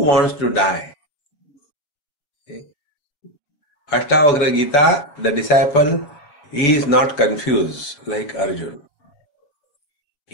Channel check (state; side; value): late; right; 6.9 ms